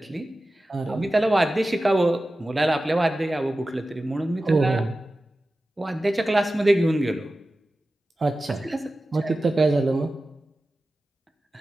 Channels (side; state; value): both; normal; correlation 0.95